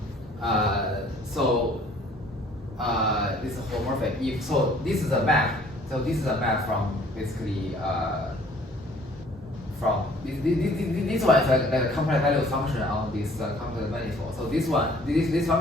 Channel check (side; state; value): both; normal; correlation 0.56